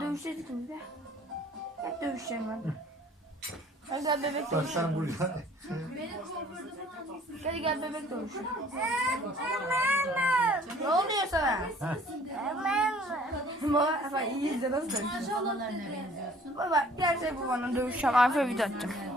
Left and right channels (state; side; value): normal; both; correlation 0.54